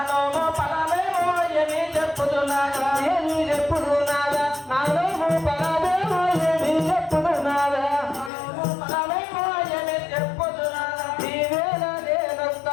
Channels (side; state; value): right; drops out; at 8.3 s